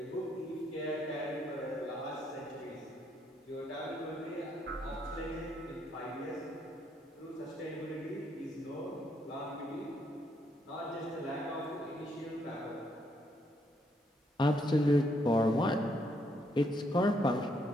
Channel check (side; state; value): both; normal; correlation 0.73